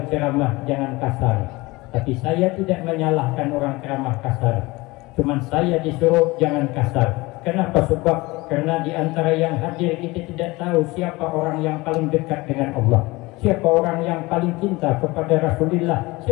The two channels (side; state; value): right; quieter; 22.1 dB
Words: ceramah jangan kasar. Tapi saya tidak menyalahkan orang ceramah kasar, cuman saya disuruh jangan kasar. Kenapa? Sebab karena di antara yang hadir kita tidak tahu siapa orang yang paling dekat dengan Allah, siapa orang yang paling cinta kepada Rasulullah,